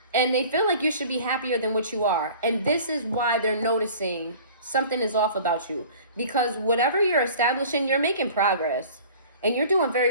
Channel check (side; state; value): both; inverted; correlation -0.45